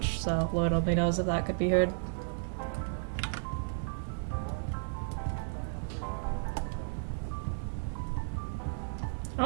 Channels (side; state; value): left; silent; digital silence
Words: so Lord only knows if that could be heard. I